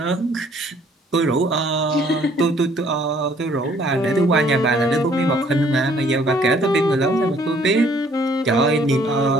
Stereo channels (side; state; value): both; normal; correlation 0.61